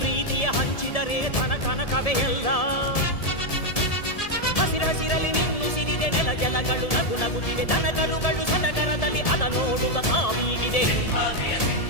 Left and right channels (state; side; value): late; right; 1.7 ms